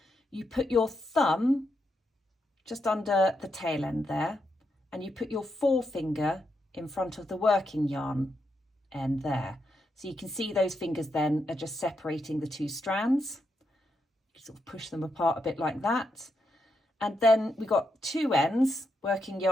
You put your thumb just under the tail end there, and you put your forefinger in front of the working yarn end there. So you can see those fingers then are just separating the 2 strands. You sort of push them apart a bit like that. And then we've got 2 ends, working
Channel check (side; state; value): both; normal; correlation 0.82